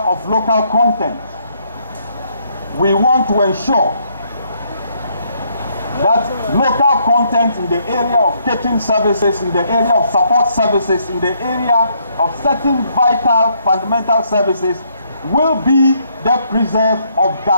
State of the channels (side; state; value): both; inverted; correlation -0.71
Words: local content, we want to ensure that local content in the area of catering services, in the area of support services, in the area of certain vital fundamental services will be the preserve of